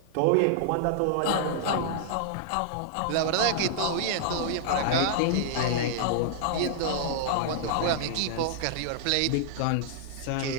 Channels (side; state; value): both; different; correlation -0.01